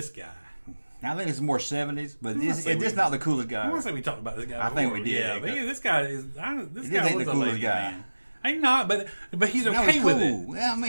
guy. Now, I think it's more 70s, but it's not the coolest guy. I want to say we talked about this guy before. I think we did. Yeah, but this guy is... This guy was the a coolest lady guy. man. I'm not, but he's okay he's with cool. it. Well, I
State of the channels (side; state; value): both; inverted; correlation -1.00